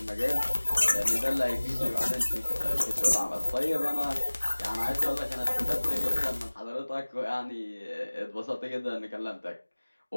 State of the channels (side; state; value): both; inverted; correlation -1.00